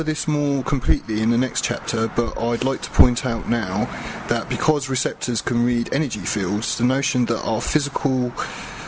this more completely in the next chapter, but I'd like to point out now that because receptors can read energy fields, the notion that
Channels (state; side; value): identical; both; correlation 1.00